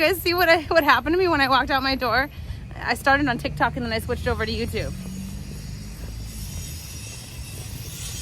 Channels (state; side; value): identical; both; correlation 1.00